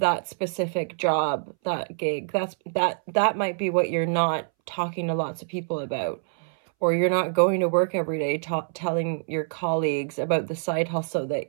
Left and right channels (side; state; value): left; silent; 61 dB below the other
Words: specific job, that gig. That might be what you're not talking to lots of people about, or you're not going to work every day telling your colleagues about the side hustle that